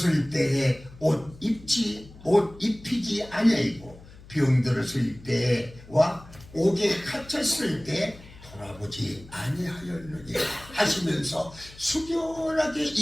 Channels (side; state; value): left; noise; hum, 20 dB below the sound